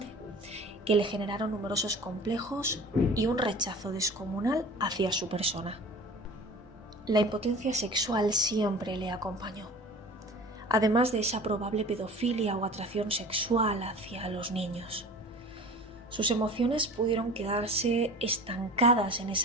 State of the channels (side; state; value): both; normal; correlation 0.41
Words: que le generaron numerosos complejos y un rechazo descomunal hacia su persona. La impotencia sexual siempre le acompañó, además de esa probable pedofilia o atracción sexual hacia los niños. Sus emociones pudieron quedarse estancadas en